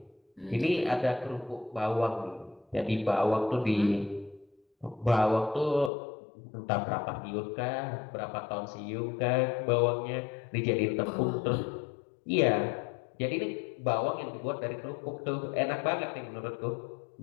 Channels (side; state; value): right; drops out; at 5.9 s